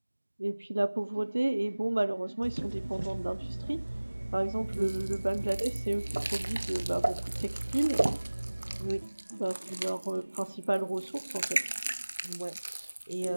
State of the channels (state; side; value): inverted; both; correlation -1.00